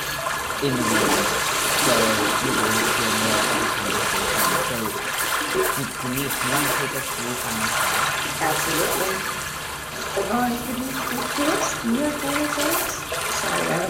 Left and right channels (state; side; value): identical; both; correlation 1.00